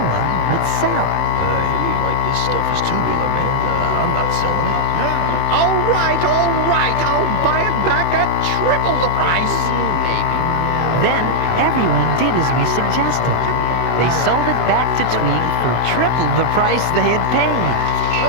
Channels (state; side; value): late; right; 24 ms